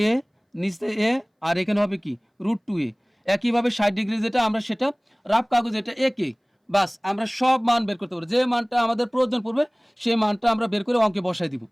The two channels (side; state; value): both; identical; correlation 1.00